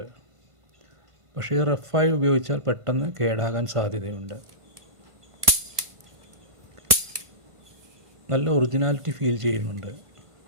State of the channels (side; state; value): left; late; 1.5 ms